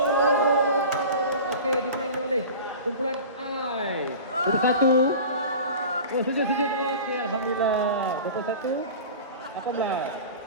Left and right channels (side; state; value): both; inverted; correlation -0.36